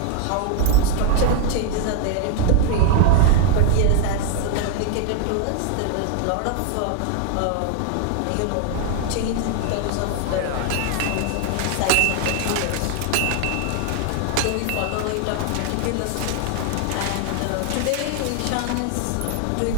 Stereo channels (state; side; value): different; both; correlation 0.00